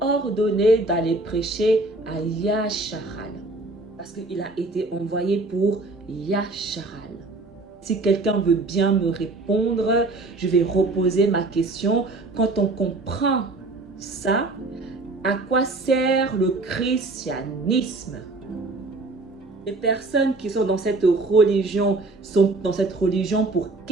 d'aller prêcher à Yacharal. Parce qu'il a été envoyé pour Yasharal. Si quelqu'un veut bien me répondre, je vais reposer ma question. Quand on comprend ça, à quoi sert le christianisme? Les personnes qui sont dans cette religion sont dans cette religion pour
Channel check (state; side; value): quieter; left; 3.1 dB